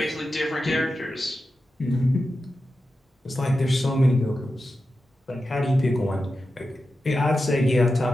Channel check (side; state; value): both; normal; correlation 0.91